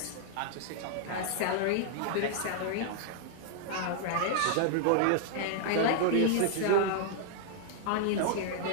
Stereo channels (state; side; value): different; both; correlation 0.00